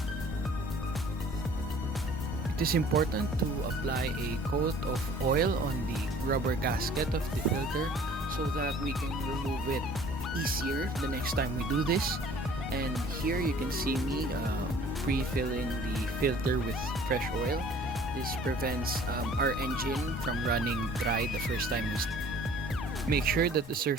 It is important to apply a coat of oil on the rubber gasket of the filter so that we can remove it easier the next time we do this. And here you can see me pre-filling the filter with fresh oil. This prevents our engine from running dry the first time we start. Make sure that the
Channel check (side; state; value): both; normal; correlation 0.52